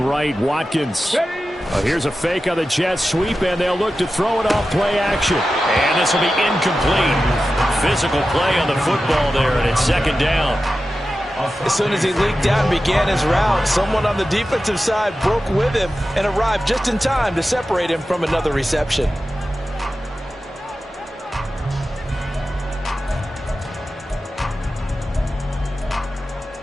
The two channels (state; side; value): normal; both; correlation 0.93